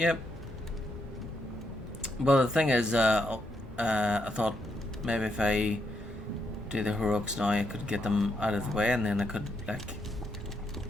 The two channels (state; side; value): normal; both; correlation 0.78